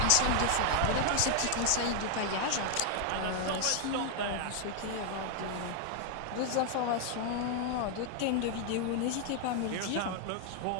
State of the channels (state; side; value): different; both; correlation 0.00